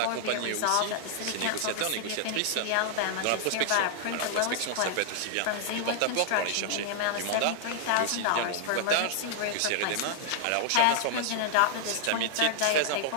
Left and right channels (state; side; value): different; both; correlation -0.01